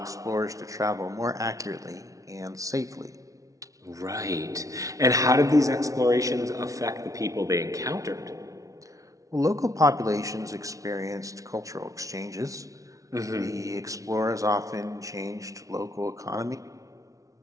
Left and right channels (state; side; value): late; left; 0.17 ms